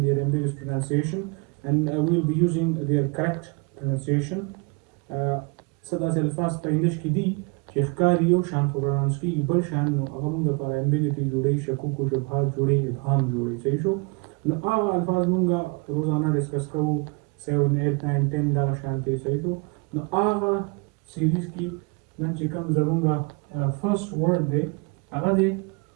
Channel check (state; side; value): quieter; left; 29.2 dB